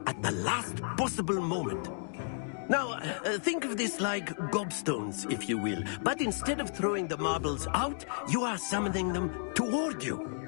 at the last possible moment. Now, think of this like gobstones, if you will. But instead of throwing the marbles out, you are summoning them toward you.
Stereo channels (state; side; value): silent; right; digital silence